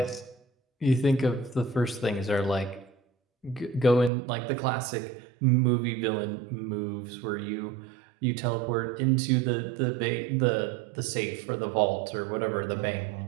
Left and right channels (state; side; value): drops out; left; at 4.1 s